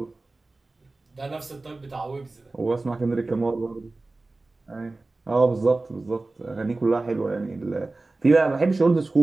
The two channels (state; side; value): quieter; left; 3.2 dB